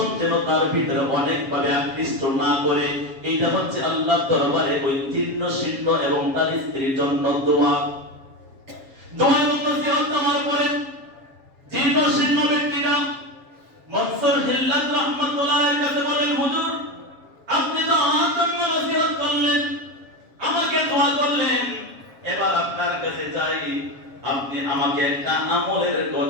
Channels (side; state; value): left; late; 7.3 ms